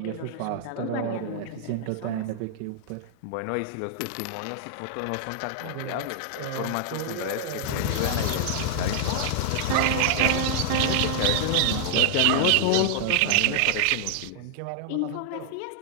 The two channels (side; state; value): both; different; correlation 0.00